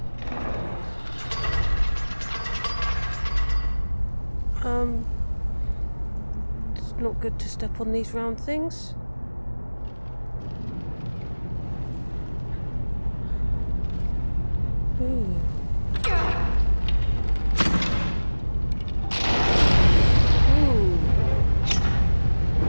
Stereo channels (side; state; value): both; inverted; correlation -1.00